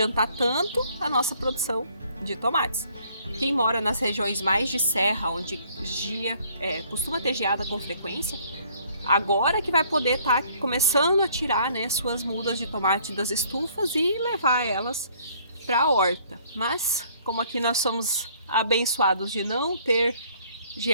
tanto a nossa produção de tomates. Quem mora nas regiões mais de serra, onde costuma ter geada com frequência, agora que vai poder estar começando a tirar, né, suas mudas de tomate das estufas e levar elas para a horta. Mas, como aqui nós somos abençoados de não ter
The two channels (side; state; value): both; inverted; correlation -0.61